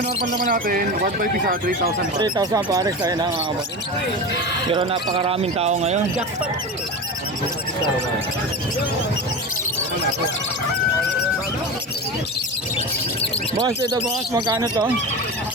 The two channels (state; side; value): normal; both; correlation 0.26